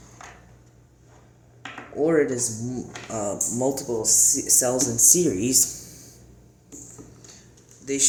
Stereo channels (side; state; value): both; identical; correlation 1.00